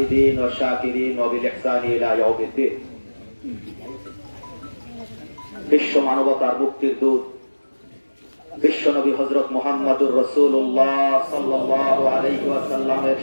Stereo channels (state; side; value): inverted; both; correlation -1.00